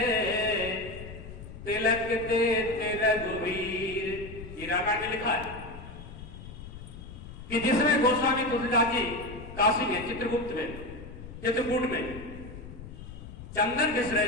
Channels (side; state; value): left; noise; rumble, 13 dB below the sound